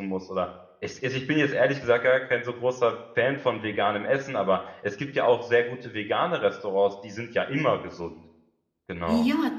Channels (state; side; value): identical; both; correlation 1.00